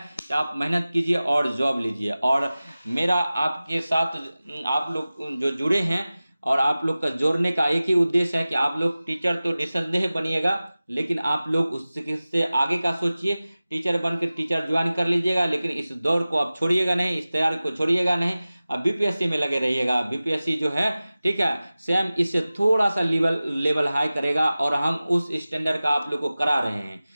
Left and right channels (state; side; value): inverted; both; correlation -0.97